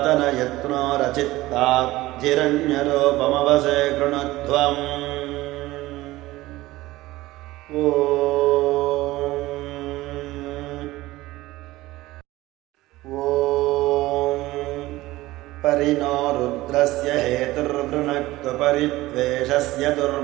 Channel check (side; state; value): left; quieter; 18.0 dB